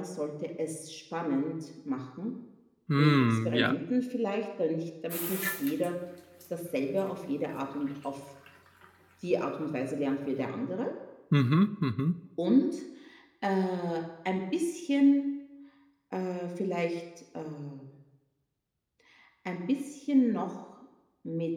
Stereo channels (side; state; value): both; identical; correlation 1.00